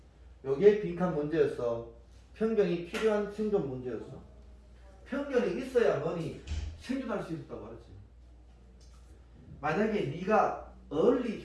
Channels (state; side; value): identical; both; correlation 1.00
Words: 요게 빈칸 문제였어. 편견이 필요한 생존 문제였어. 편견이 있어야 뭐니 생존할 수 있었다고 하지. 만약에 네가 early